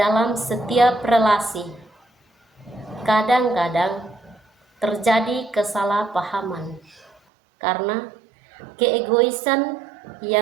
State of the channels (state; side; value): drops out; left; at 7.2 s